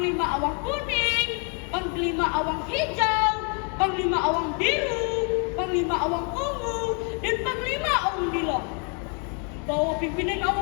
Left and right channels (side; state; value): right; quieter; 38.4 dB